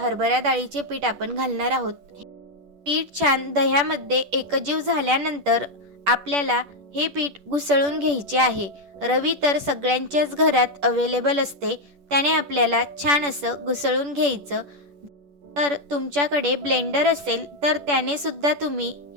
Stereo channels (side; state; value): left; late; 10 ms